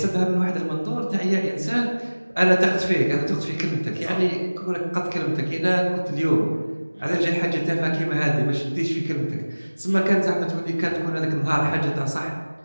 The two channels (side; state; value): both; inverted; correlation -1.00